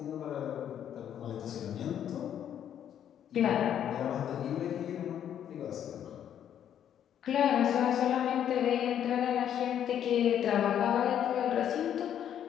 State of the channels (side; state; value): right; quieter; 9.8 dB